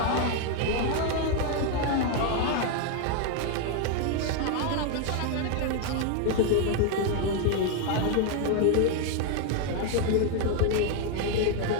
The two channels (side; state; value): both; different; correlation 0.01